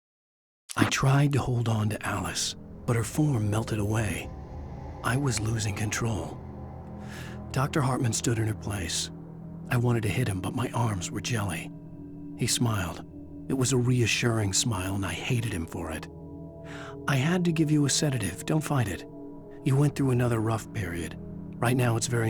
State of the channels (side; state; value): both; identical; correlation 1.00